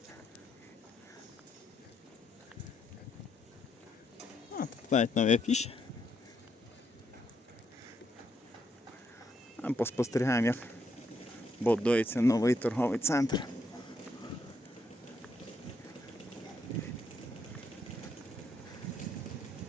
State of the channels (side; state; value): both; normal; correlation 0.76